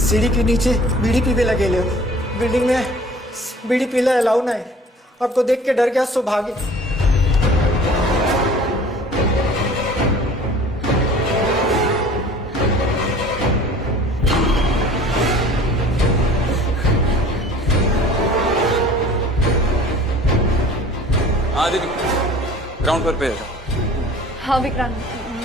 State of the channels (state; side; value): normal; both; correlation 0.47